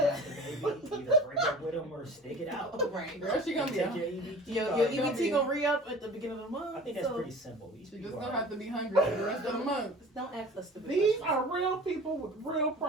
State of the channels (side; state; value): both; normal; correlation 0.42